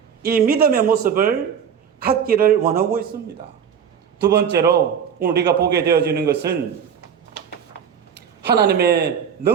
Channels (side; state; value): left; quieter; 7.7 dB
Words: 이 믿음의 모습을 갖기를 원하고 있습니다. 두 번째로 오늘 우리가 보게 되어지는 것은 하나님의